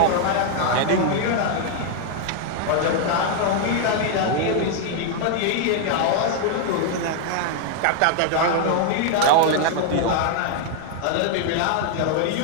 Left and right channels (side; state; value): both; different; correlation 0.00